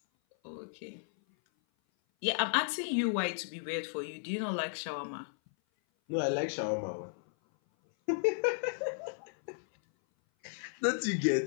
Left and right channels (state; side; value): silent; right; 55 dB below the other